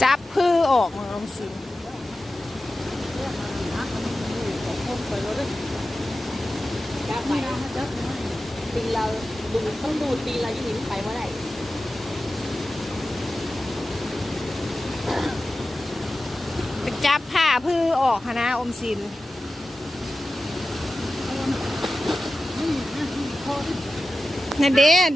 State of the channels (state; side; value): normal; both; correlation 0.94